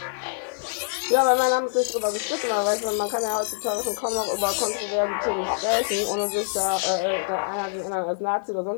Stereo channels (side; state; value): right; silent; 56 dB below the other